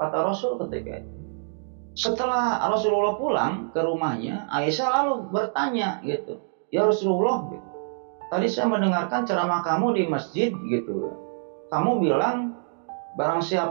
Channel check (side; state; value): left; silent; digital silence